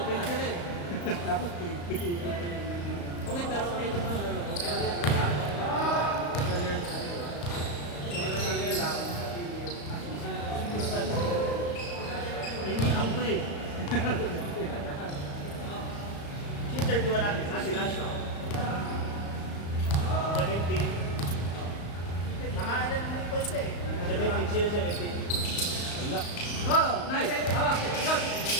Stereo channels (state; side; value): late; right; 35 ms